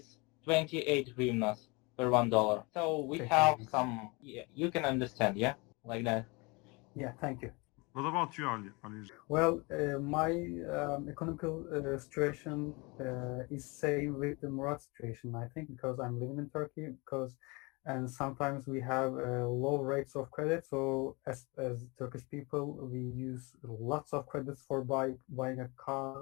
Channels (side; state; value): right; quieter; 27.4 dB